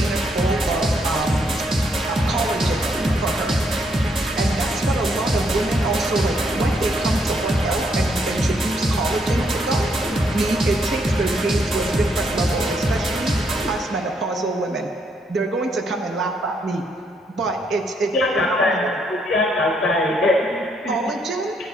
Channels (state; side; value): normal; both; correlation 0.74